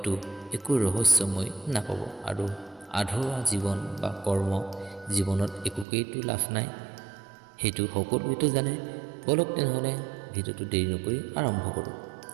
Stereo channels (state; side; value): drops out; left; at 5.9 s